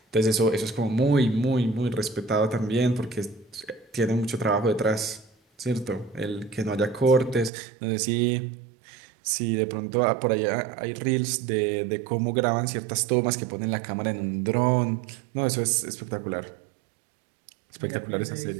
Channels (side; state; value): left; drops out; at 7.5 s